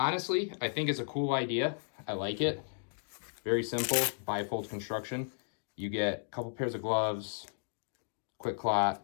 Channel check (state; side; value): silent; right; 55 dB below the other